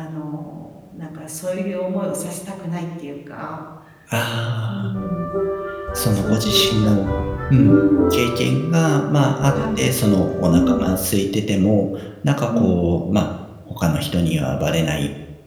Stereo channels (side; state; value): both; identical; correlation 1.00